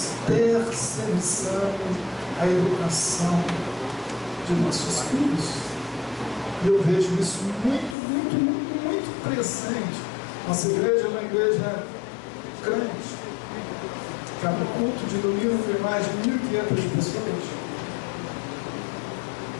terceirizando a educação de nossos filhos. E eu vejo isso muito presente. Nossa igreja é uma igreja grande. Cada culto de domingo tem mais de 1.500 pessoas.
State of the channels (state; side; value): drops out; right; at 8.0 s